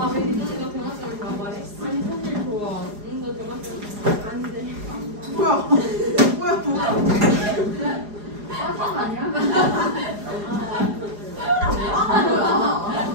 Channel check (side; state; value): left; late; 4.9 ms